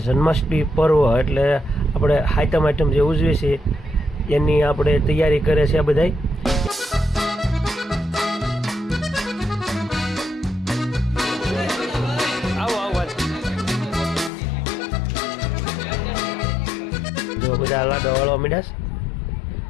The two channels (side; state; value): right; drops out; at 14.3 s